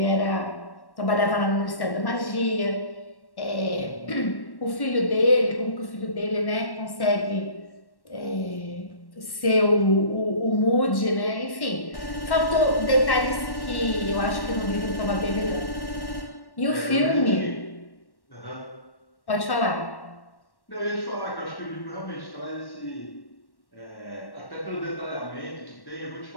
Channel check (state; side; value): late; right; 1.1 ms